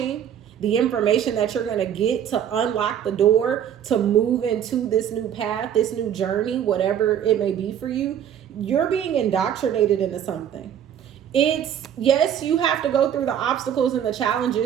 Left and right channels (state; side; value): quieter; left; 9.5 dB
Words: the information that you're going to get to unlock the door to move into this new path, this new journey, whatever it may be for you, you're being indoctrinated into something. It's, yes, you have to go through the obstacles and the